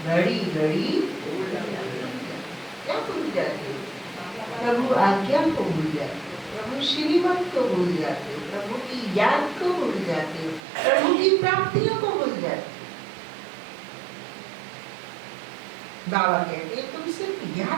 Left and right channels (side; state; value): left; drops out; at 10.6 s